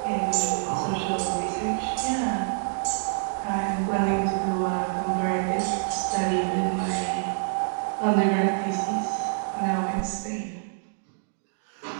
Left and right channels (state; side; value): silent; left; digital silence